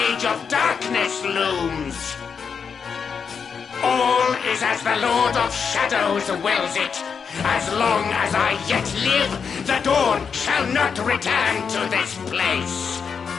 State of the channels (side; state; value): right; quieter; 6.2 dB